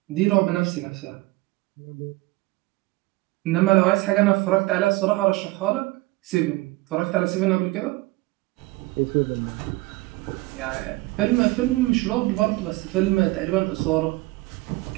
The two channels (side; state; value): left; quieter; 21.3 dB